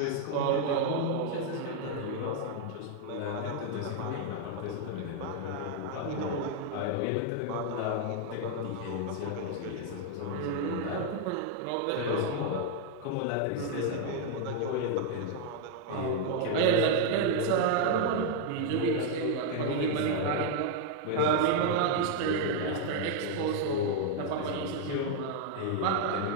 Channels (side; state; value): both; different; correlation 0.00